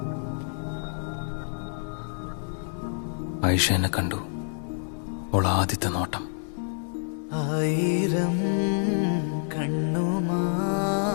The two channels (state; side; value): silent; right; digital silence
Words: ആയിഷ എന്നെ കണ്ടു. ഓൾ ആദ്യത്തെ നോട്ടം. ആയിരം